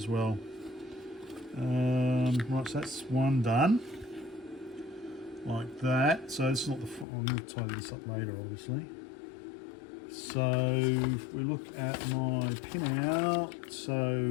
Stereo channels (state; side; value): drops out; right; at 7.1 s